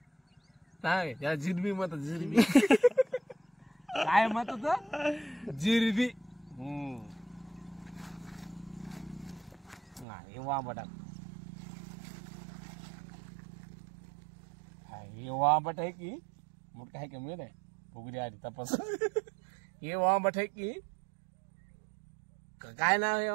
सांग त्याला जिरबी म्हणतात जिरबी काय म्हणतात जिरबी हे वांबटा हे वांबट आहे की मोठं आहे का मिळत आहे फुगडी आधी तपास हे वांबट आहे की काय नाव आहे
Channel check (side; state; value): left; drops out; at 10.1 s